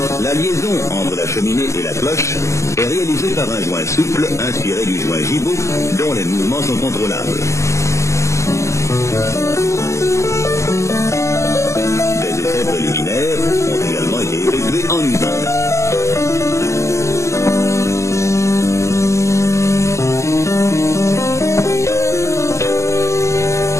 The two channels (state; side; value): late; right; 0.14 ms